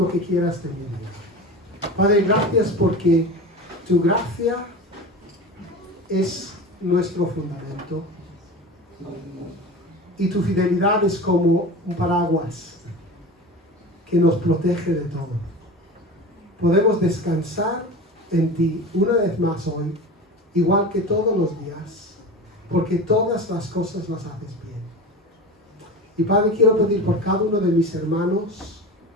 que quieras de mi vida. Padre, gracias porque tu gracia es nuestro fundamento y tu fidelidad es como un paraguas que nos protege de todo. Podemos descansar en ti una vez más hoy, igual que todos los días, porque todas las cosas las haces bien. Y Padre, quiero pedir por cada uno de mis hermanos,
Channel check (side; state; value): both; normal; correlation 0.31